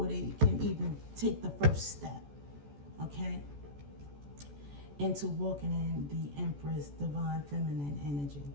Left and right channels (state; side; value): late; left; 14 ms